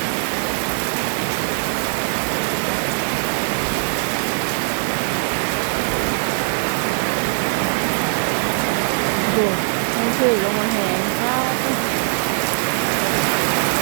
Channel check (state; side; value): silent; left; digital silence